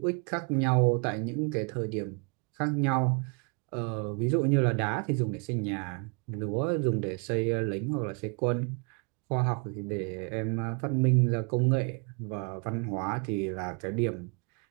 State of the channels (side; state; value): left; quieter; 35.0 dB